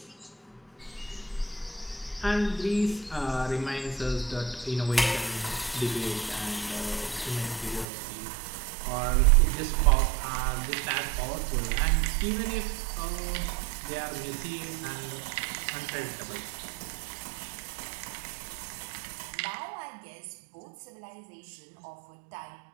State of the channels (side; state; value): left; drops out; at 7.9 s